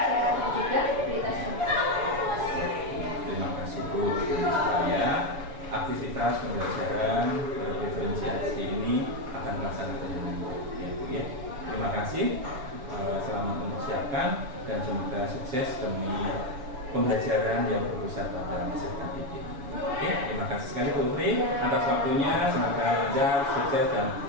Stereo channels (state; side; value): late; left; 7.1 ms